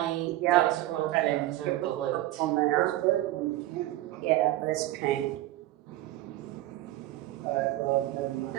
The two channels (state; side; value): quieter; left; 15.7 dB